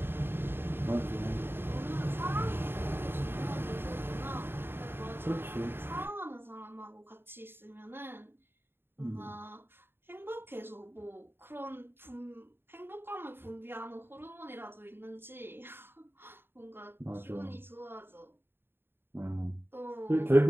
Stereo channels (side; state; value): left; late; 0.11 ms